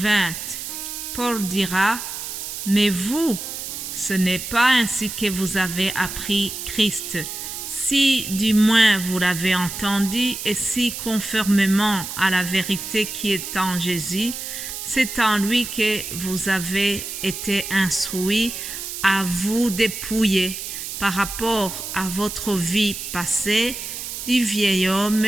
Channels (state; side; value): noise; right; hiss, 7 dB below the sound